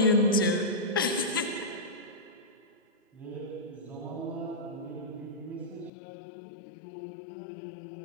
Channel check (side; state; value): right; drops out; at 5.9 s